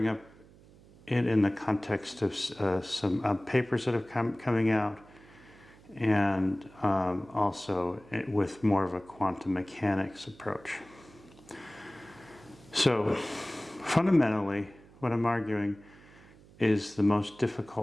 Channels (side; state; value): right; noise; hum, 24 dB below the sound